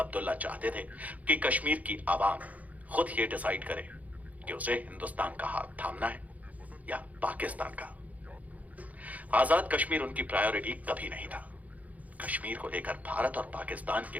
चाहते थे कि कश्मीर की आवाम खुद ये डिसाइड करे कि उसे हिंदुस्तान का हाथ थामना है या पाकिस्तान का। आजाद कश्मीर उनकी प्रायोरिटी कभी नहीं था। कश्मीर को लेकर भारत और पाकिस्तान के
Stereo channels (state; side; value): late; left; 0.074 ms